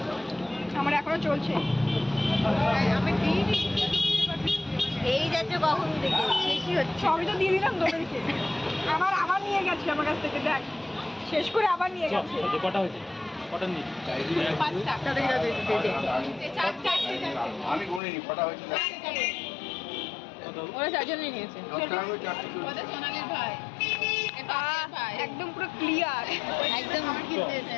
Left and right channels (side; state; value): right; drops out; at 18.0 s